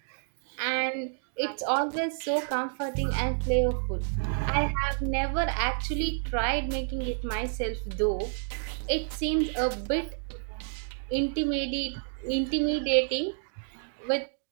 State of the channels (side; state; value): left; silent; digital silence